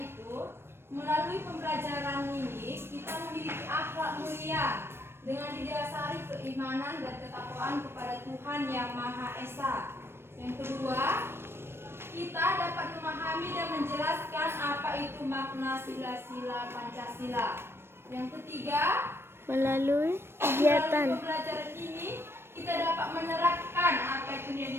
melalui pembelajaran ini kita memiliki akhlak mulia dengan didasari keimanan dan ketakwaan kepada Tuhan Yang Maha Esa. Yang kedua, kita dapat memahami dan menjelaskan apa itu makna sila-sila Pancasila. Yang ketiga, Melalui melalui kegiatan pembelajaran ini kita dapat menerapkan apa itu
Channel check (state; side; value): late; left; 0.12 ms